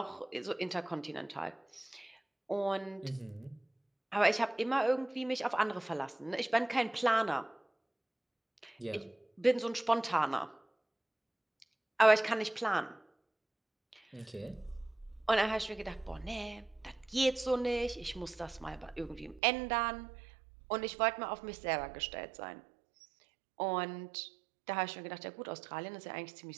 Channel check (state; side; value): drops out; left; at 19.4 s